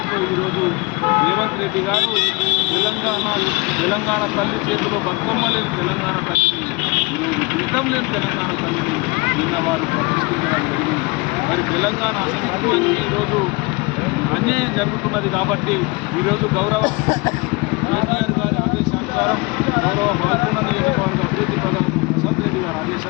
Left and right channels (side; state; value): right; quieter; 26.3 dB